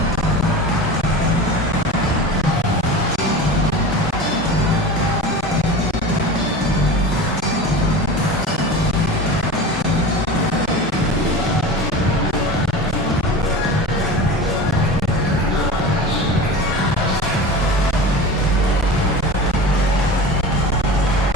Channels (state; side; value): normal; both; correlation 0.32